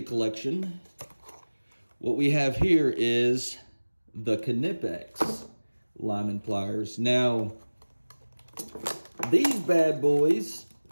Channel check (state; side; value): inverted; both; correlation -1.00